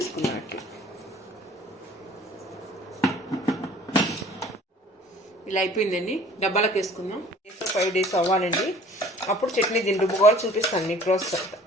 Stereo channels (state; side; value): normal; both; correlation 0.51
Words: అట్లా ఇలా అయిపోయిందండి. డబ్బాలకు వేసుకుందాం. 5 days అవ్వాలండి. అప్పుడు చట్నీ దీన్ని రుబ్బుకోవాలి, చూపిస్తాను మీకు ప్రాసెస్ అంతా.